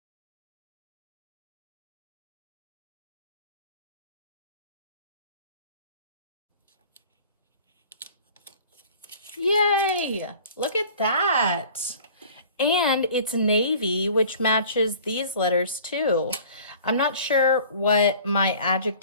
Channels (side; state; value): both; inverted; correlation -0.47